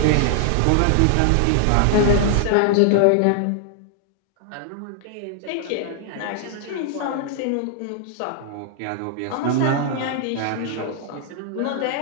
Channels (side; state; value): both; different; correlation 0.00